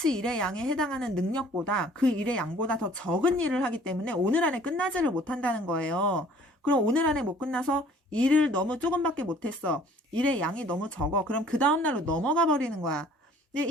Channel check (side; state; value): both; normal; correlation 0.54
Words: 일의 양에 해당하는 능력보다 그 일의 양보다 더 적은 일을 하기 때문에 오늘 안에 끝나지를 못한다는 거예요. 그럼 오늘 안에 못 끝나서 일을 너무 조금밖에 못했어. 일의 양이 너무 적어. 그럼 그 다음날로 넘어가 버리는 거야. 근데